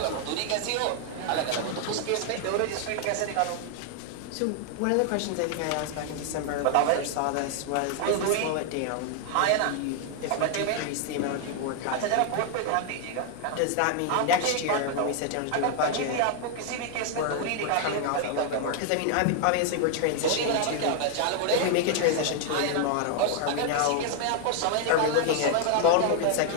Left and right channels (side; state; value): both; different; correlation 0.00